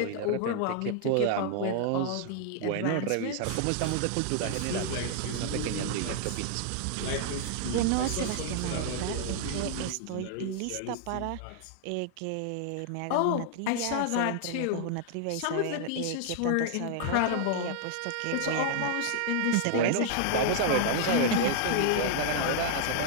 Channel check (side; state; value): both; different; correlation 0.00